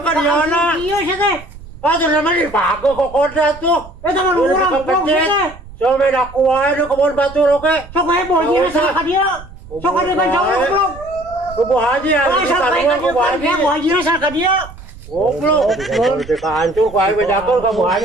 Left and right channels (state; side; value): noise; right; rumble, 18 dB below the sound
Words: di mana? Iya sih teh. Ah, tuh namanya dipakai kok koda tuh. Eta mah urang goblok sih teh. So meda kuai di kebun batu oke. Sok ae buah aja rasa hadiah. Sok ada kan cowok goblok. Kubu haji ya, Oh, sok ae kan kubu haji. buah aja rasa hadiah. Goblok, kita hancur, kuai bejakul kamu